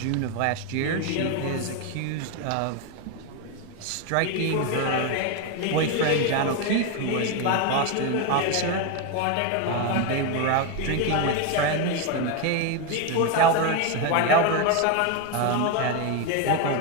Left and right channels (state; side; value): different; both; correlation 0.02